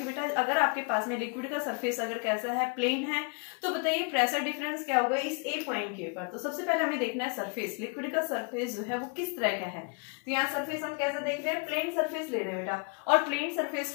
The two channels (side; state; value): right; quieter; 36.3 dB